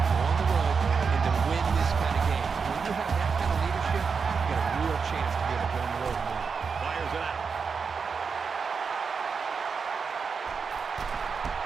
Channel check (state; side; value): quieter; left; 5.5 dB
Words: go on the road and to win this kind of game. When you have that kind of leadership, you got a real chance to be able to go on the road and win. Fires it out.